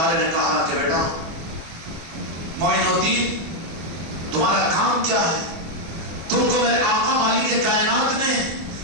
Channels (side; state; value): left; late; 25 ms